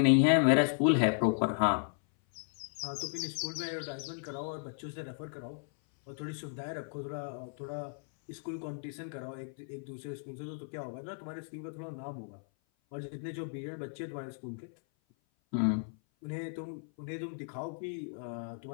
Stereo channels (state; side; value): silent; right; 55 dB below the other